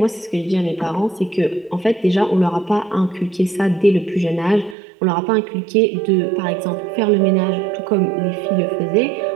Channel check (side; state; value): left; drops out; at 4.8 s